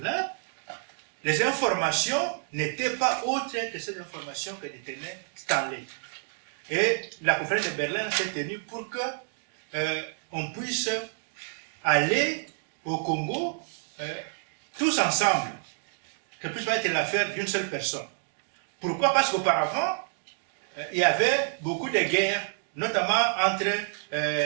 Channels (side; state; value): left; silent; 59 dB below the other